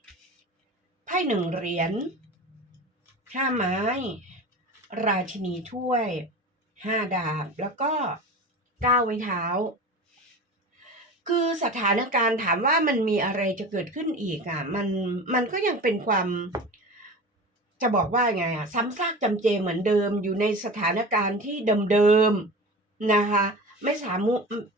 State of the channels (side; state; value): both; normal; correlation 0.33